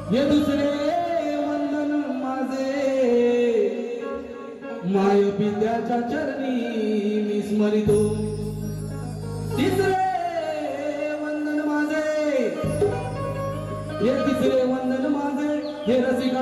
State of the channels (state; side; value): identical; both; correlation 1.00